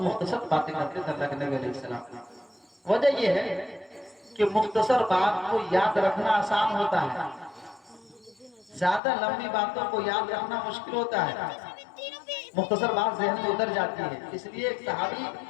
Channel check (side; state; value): right; drops out; at 9.0 s